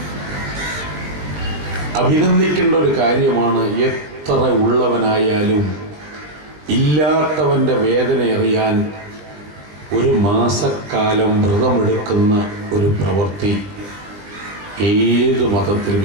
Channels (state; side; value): late; left; 20 ms